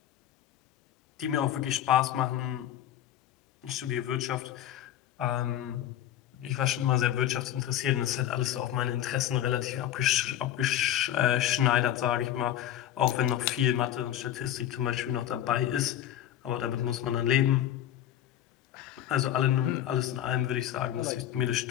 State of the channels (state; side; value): quieter; right; 11.7 dB